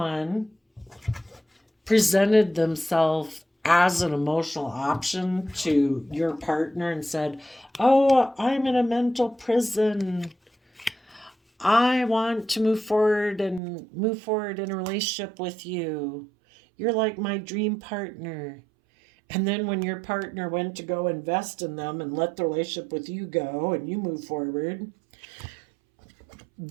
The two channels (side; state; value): left; drops out; at 13.6 s